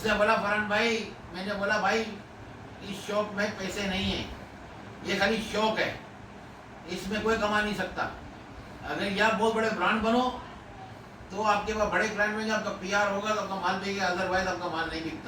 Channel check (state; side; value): identical; both; correlation 1.00